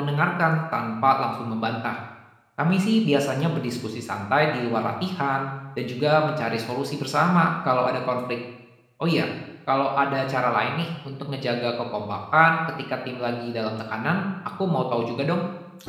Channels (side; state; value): both; identical; correlation 1.00